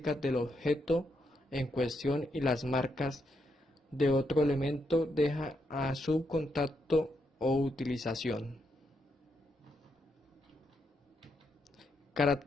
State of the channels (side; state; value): both; normal; correlation 0.80